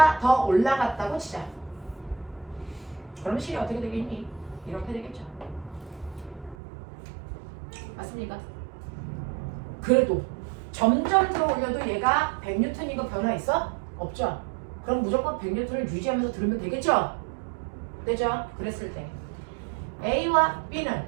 더 올라갔다고 치자. 그럼 실이 어떻게 되겠니? 이렇게 되겠죠. 맞습니까? 그래도 점점 들어 올려도 얘가 100N이고 변화 있어? 없죠? 그럼 무조건 100N을 유지하면서 들으면 되겠죠? 되죠? 그랬을 때 A와 B는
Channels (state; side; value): drops out; left; at 6.6 s